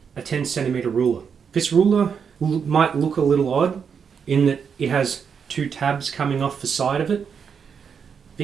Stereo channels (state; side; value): quieter; left; 6.7 dB